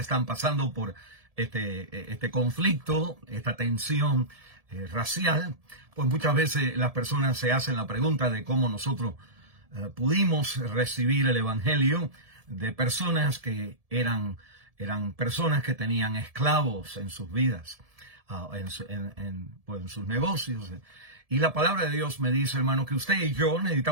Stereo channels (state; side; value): late; left; 1.7 ms